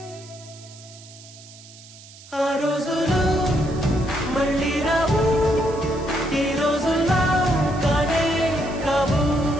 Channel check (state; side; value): noise; right; hiss, 20 dB below the sound